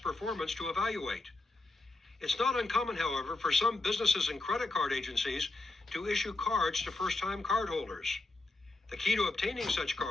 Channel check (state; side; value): quieter; right; 3.1 dB